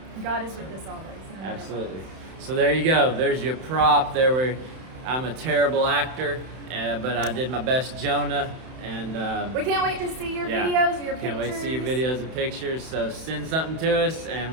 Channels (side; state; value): left; late; 31 ms